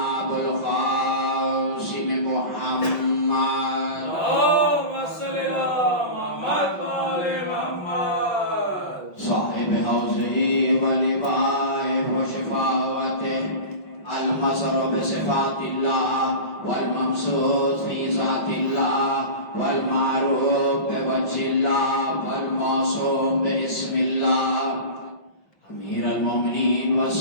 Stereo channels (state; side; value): late; right; 5.7 ms